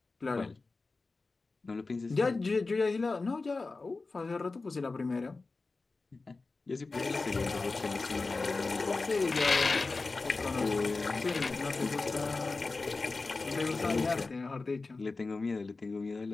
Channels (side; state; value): right; quieter; 3.7 dB